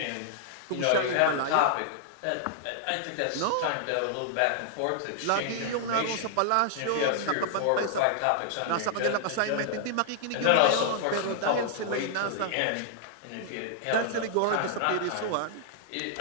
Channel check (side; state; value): both; different; correlation -0.01